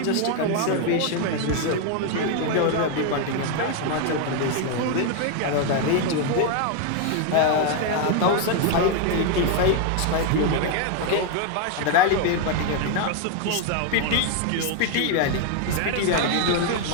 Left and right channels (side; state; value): both; different; correlation 0.01